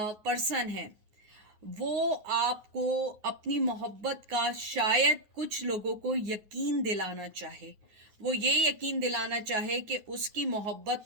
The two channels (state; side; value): late; left; 9.4 ms